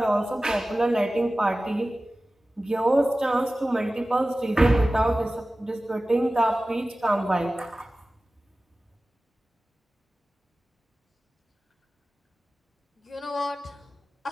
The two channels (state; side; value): normal; both; correlation 0.96